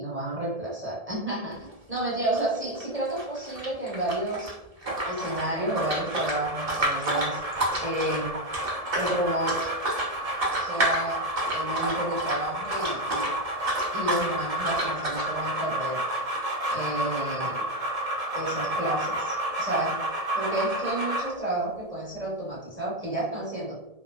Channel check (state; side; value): late; left; 1.7 ms